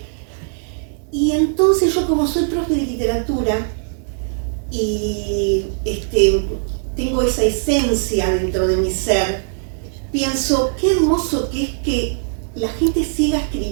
Y entonces yo, como soy profe de literatura y tengo esa esencia dentro de mi ser, pienso qué hermoso que es que la gente siga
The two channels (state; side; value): silent; left; digital silence